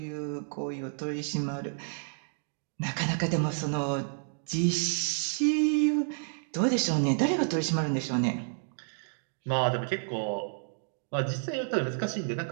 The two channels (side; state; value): left; silent; digital silence